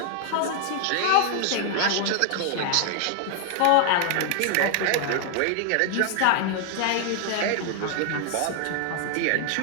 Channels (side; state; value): both; different; correlation 0.00